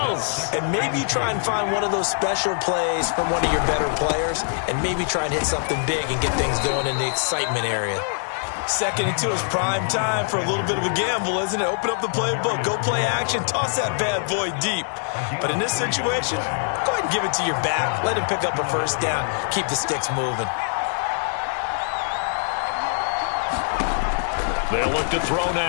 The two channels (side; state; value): right; silent; 63 dB below the other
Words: else. and maybe try and find one of those special plays from one of your better players, and maybe try and hit something big and get things going in the excitement area. Second and 2 is prime time for a little bit of a gamble, isn't it? Open up the playbook, go play action, toss that bad boy deep. But in this situation, go ahead and give it to your back. Let him pick up a first down. Keep the sticks moving. They'll look to throw